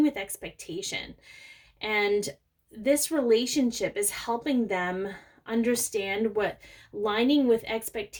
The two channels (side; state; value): both; identical; correlation 1.00